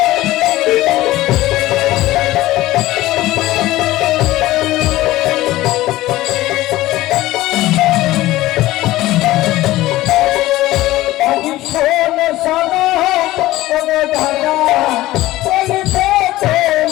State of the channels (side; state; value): right; quieter; 16.7 dB